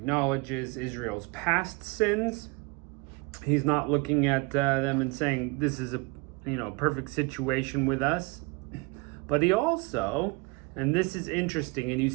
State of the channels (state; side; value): quieter; left; 28.4 dB